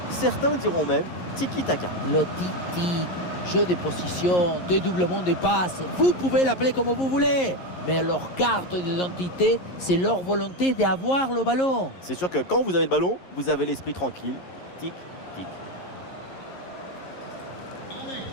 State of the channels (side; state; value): right; late; 11 ms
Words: Certains diront même tiki-taka. Le tiki, jeu de position, dédoublement des passes, vous pouvez l'appeler comme vous voulez. Mais leur carte d'identité, c'est leur volonté d'avoir le ballon. C'est sûr que quand vous avez le ballon, vous avez l'esprit tranquille. Tic, tic. Allez,